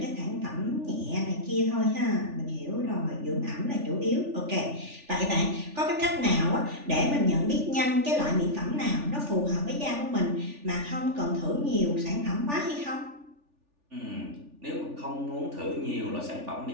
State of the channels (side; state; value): left; late; 3.4 ms